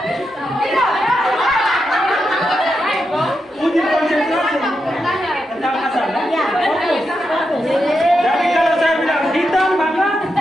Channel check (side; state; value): both; normal; correlation 0.86